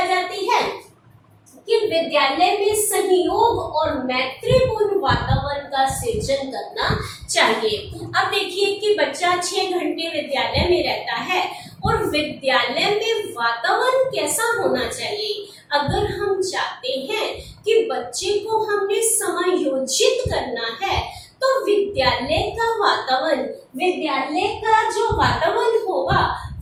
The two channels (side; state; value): both; identical; correlation 1.00